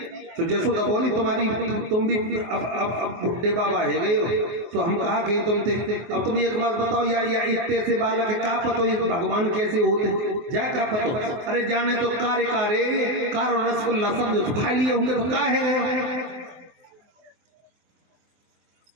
तो जसोदा बोली तुम्हारी तुम भी अब बुढ़े बाबा है गए हो तो हम कहा गए तुम थे। अब तुम एक बात बताओ या इतने से बालक है का पतो ये भगवान कैसे होते जा का पतो। अरे जाने तो कारे कार और रसगुल्ला समझो तो खा लिए होंगे तो का है गए।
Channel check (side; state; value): left; late; 23 ms